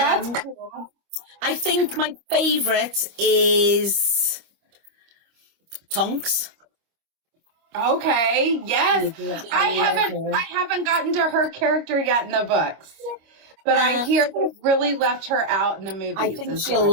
cool. I think my favourite is Tonks. Okay, yes. I love her. haven't gotten to her character yet in the books. But I hear they really left her out in the movies. I think is she'll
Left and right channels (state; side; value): late; left; 25 ms